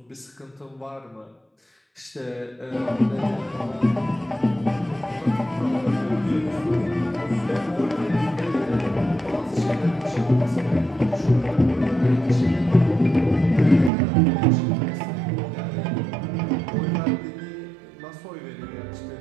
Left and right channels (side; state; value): left; drops out; at 13.9 s